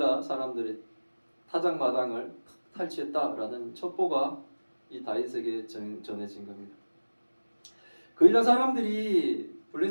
사람들의 타작 마당을 탈취했다라는 첩보가 이 다윗에게 전해진 겁니다. 그일라 사람들이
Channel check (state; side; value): inverted; both; correlation -1.00